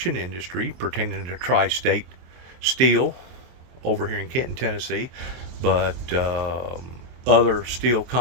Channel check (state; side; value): late; left; 23 ms